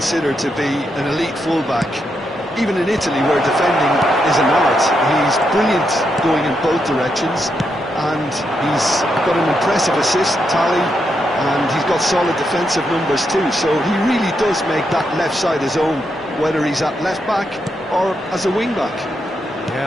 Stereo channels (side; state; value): both; normal; correlation 0.82